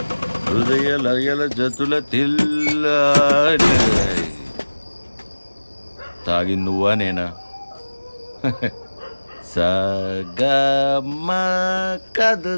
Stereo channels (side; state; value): both; inverted; correlation -1.00